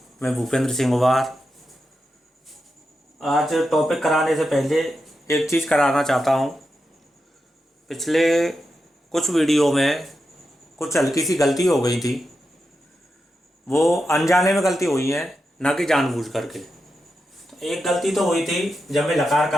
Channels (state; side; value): normal; both; correlation 0.88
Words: मैं भूपेंद्र सिंह गुबार। आज टॉपिक कराने से पहले एक चीज़ कराना चाहता हूँ। पिछले कुछ वीडियो में कुछ हल्की सी गलती हो गई थी। वो अनजाने में गलती हुई है, ना कि जानबूझ करके। तो एक गलती तो हुई थी जब मैं लकार